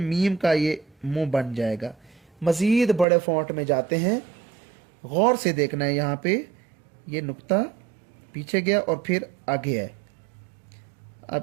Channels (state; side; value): drops out; left; at 3.1 s